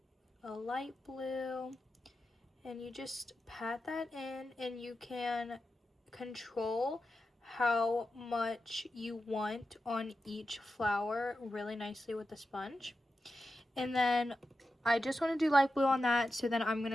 a light blue, and you just pat that in, and you can control how much you want on each flower really nicely with the sponge. And then I just want to do light blue on that, so then I'm going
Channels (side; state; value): both; normal; correlation 0.90